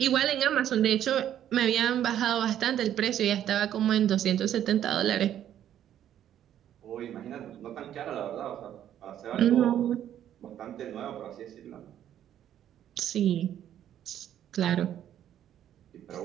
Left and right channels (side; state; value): left; quieter; 10.8 dB